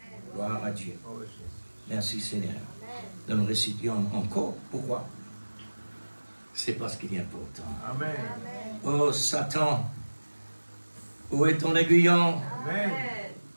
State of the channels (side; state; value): both; inverted; correlation -1.00